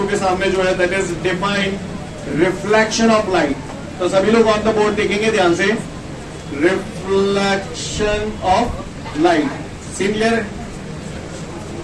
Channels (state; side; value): identical; both; correlation 1.00